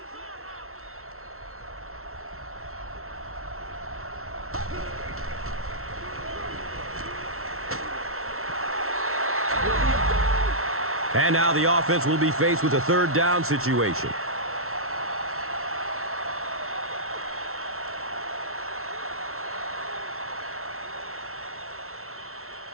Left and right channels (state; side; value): late; left; 0.63 ms